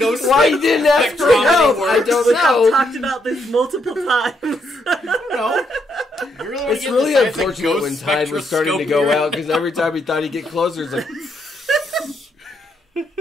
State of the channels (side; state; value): both; normal; correlation 0.76